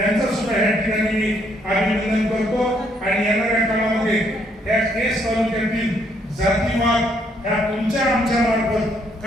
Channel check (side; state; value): both; normal; correlation 0.70